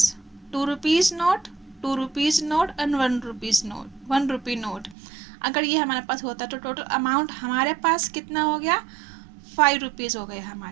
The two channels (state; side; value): drops out; left; at 5.0 s